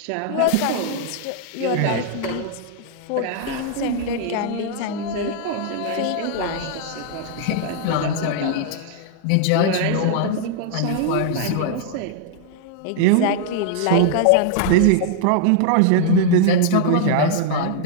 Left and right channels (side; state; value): both; different; correlation -0.01